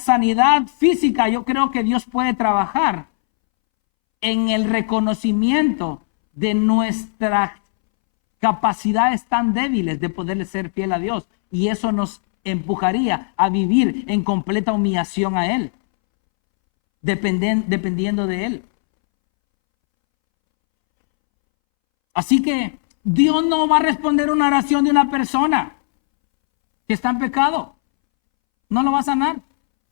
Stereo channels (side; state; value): right; silent; 66 dB below the other